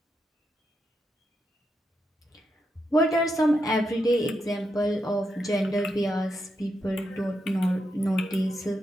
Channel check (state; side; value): normal; both; correlation 0.84